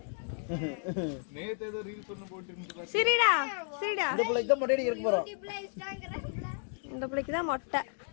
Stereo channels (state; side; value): silent; right; 56 dB below the other